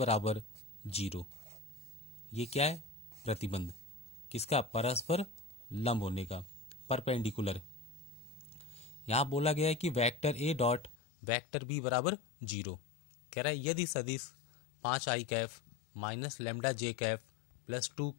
0। ये क्या है? प्रतिबंध। किसका? परस्पर लंब होने का, परपेंडिकुलर। यहां बोला गया है कि vector A dot vector B बराबर 0। कह रहा है यदि सदिश 5i cap minus lambda J cap plus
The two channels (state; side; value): drops out; right; at 11.0 s